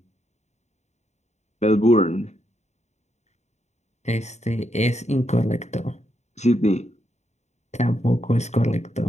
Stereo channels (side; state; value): right; late; 0.33 ms